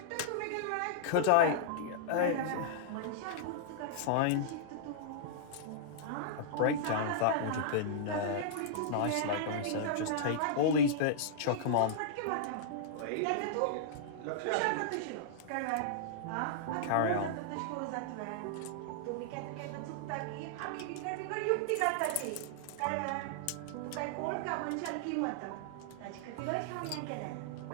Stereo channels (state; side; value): different; both; correlation -0.02